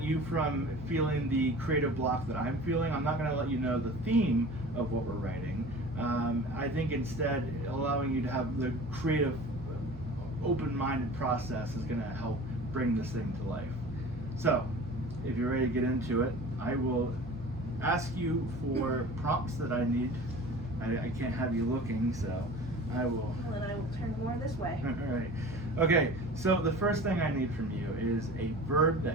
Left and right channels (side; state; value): both; normal; correlation 0.40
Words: you from feeling the creative block that I'm feeling, I'm not going to let you know the theme of what we're writing. I think instead allowing you to have the creative, open-minded process is going to help bring this thing to life. So, if you're ready to get into it, I will ask you for prompts that I need. I can't have you looking, so I will. Well, then I will turn more this way. All right. Okay, so the first thing I need from you is a verb that